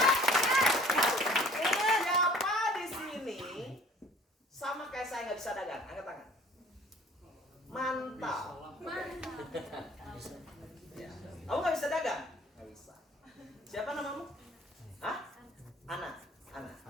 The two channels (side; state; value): both; normal; correlation 0.51